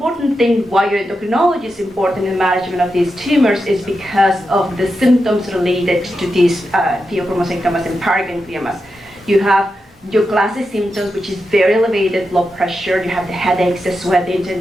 thing why your endocrinology is important in the management of these tumors is because of the symptoms related to these pheochromocytomas and perigangliomas. You have your classic symptoms, which is very elevated blood pressure. You have the headaches, the sweating, and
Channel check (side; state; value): both; normal; correlation 0.88